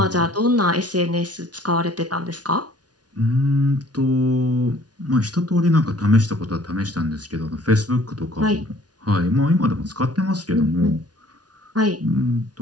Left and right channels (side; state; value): left; late; 0.69 ms